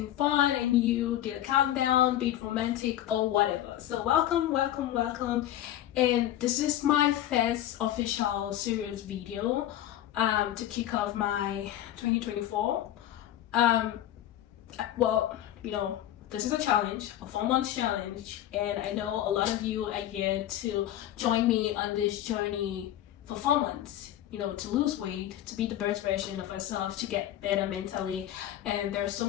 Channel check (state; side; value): quieter; right; 12.6 dB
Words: fun and you did a countdown, be it romantic or whatever. So welcome. And this is my first official serious video to kick off my 2024. Well, you know, this is a challenge, a 4-month challenge, and I know a lot of you are here to join me on this journey for 4 months, you know, to lose weight, to be the best version of ourselves, to get better mentally. And there are so